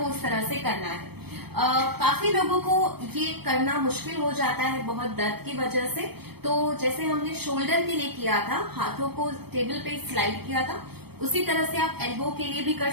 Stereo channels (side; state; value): left; late; 0.97 ms